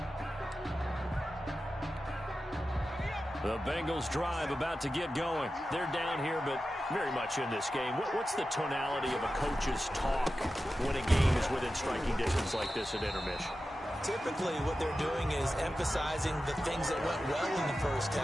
The Bengals drive about to get going. They're down here, but very much in this game. What's the tonality of a coach's talk when a game is within striking distance like this at intermission? Typically, what they're doing is emphasizing the things that went well in the first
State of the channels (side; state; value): both; normal; correlation 0.93